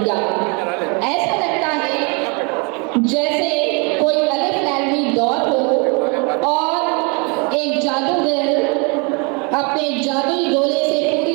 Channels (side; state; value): left; quieter; 32.7 dB